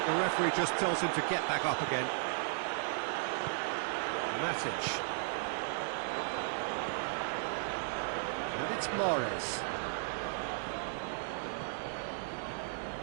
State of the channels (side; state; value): left; silent; digital silence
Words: the referee just tells him to get back up again. Matic. And it's Mahrez.